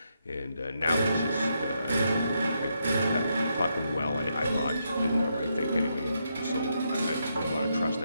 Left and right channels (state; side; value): inverted; both; correlation -0.80